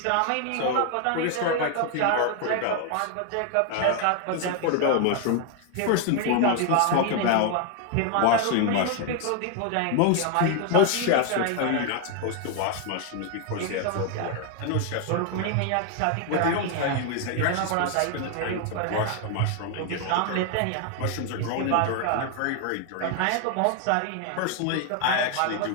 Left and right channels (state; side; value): different; both; correlation 0.01